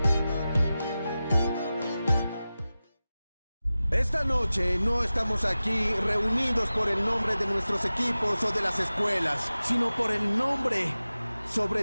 noche no estamos aquí reunidos por el nombre de nuestros equipos o de las escuelas, sino por el nombre,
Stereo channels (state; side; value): inverted; both; correlation -0.95